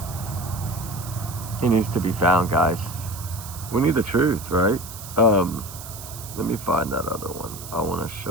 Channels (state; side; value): noise; right; hiss, 13 dB below the sound